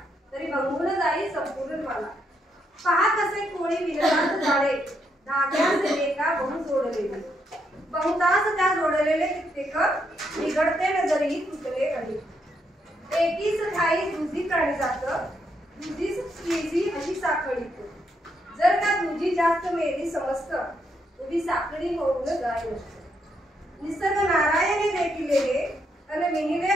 तरी भंगून जाई संपूर्ण मला पहा कसे कोळी विनतात झाडे धाग्यास एका बहु जोडलेले बहुतास त्या जोडलेले कित्येक बिघडते नजरी तुटले अडी एकीच ठाई दुजी प्राणी जात दुजीच तिजी अशी साखळी जर का दुजी जास्त मेली समस्त उभी साखळी होऊन जाय निसर्ग नारायणे देखिले अन विनिले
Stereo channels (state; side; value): normal; both; correlation 0.77